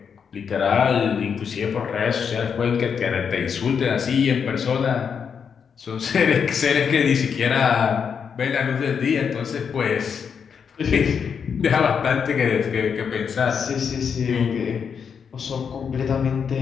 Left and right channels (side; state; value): right; quieter; 6.7 dB